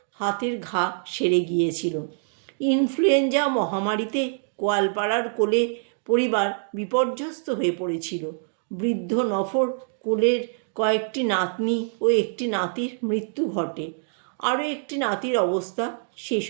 হাতের ঘা সেরে গিয়েছিল। ইনফ্লুয়েঞ্জা মহামারীতে গোয়ালপাড়ার কোলে পরিবার বিপর্যস্ত হয়ে পড়েছিল। বৃদ্ধ নফর কোলের কয়েকটি নাতনি ও একটি নাতির মৃত্যু ঘটে। আরও একটি নাতির অবস্থা সে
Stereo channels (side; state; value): left; silent; digital silence